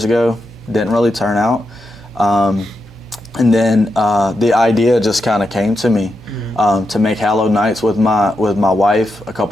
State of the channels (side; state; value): both; normal; correlation 0.86